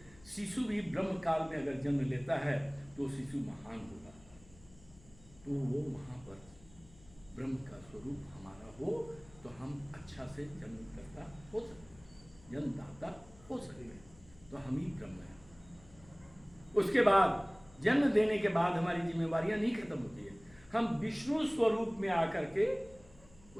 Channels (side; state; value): left; noise; hum, 24 dB below the sound